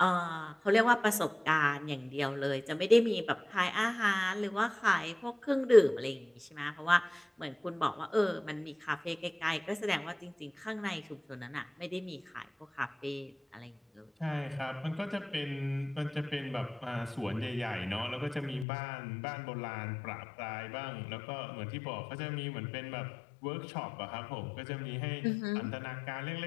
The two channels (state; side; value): drops out; right; at 18.7 s